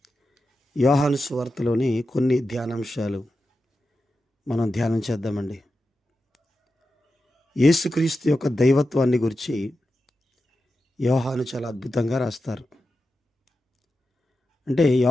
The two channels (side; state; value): both; normal; correlation 0.90